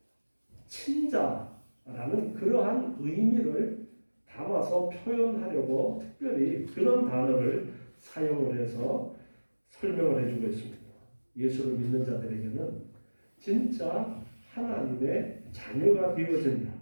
친자라는 그러한 의미를 담아서 표현하려고 특별히 그런 단어를 사용을 해서 설명을 해주고 있습니다. 예수를 믿는 자들에게는 진짜 하나님의 자녀가 되어진다.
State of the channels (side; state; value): both; inverted; correlation -1.00